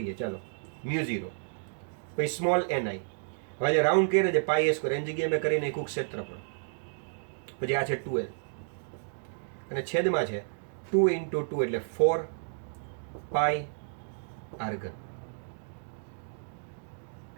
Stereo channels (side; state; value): left; silent; digital silence